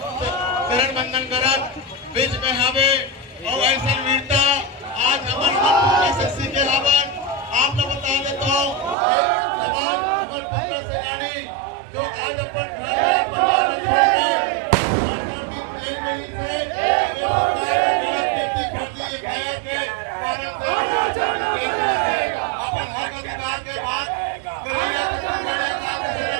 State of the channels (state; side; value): drops out; left; at 9.0 s